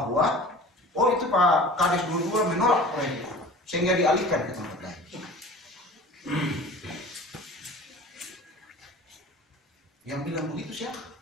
oh itu Pak Kades 22 menolak proyek itu sehingga dialihkan ke tempat lain. Yang bilang begitu siapa?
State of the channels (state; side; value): normal; both; correlation 0.41